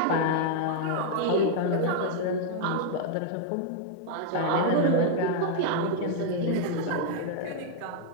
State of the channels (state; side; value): different; both; correlation -0.01